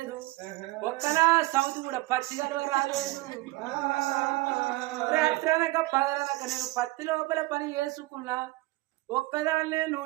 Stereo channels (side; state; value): left; quieter; 20.4 dB